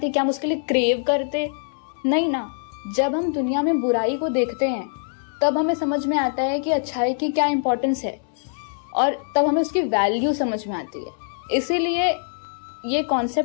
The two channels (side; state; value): right; silent; digital silence